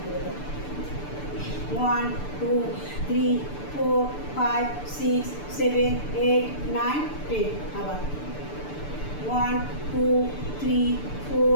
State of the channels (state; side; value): late; right; 6.8 ms